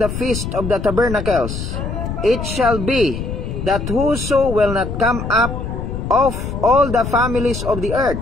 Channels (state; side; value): noise; left; rumble, 5 dB below the sound